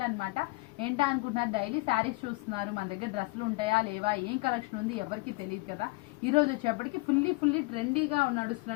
అన్నమాట. ఏంటా అనుకుంటున్నారు, డైలీ శారీస్ చూస్తున్నారు, మన దగ్గర డ్రెస్సులు ఉంటాయా లేవా, ఏం కలెక్షన్ ఉంది ఎవరికి తెలియదు కదా. ఈ రోజు వచ్చేప్పటికి ఫుల్లీ ట్రెండీగా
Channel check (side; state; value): right; quieter; 24.3 dB